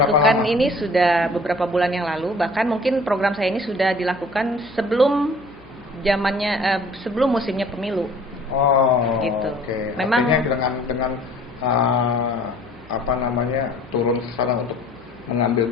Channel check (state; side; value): noise; left; hum, 27 dB below the sound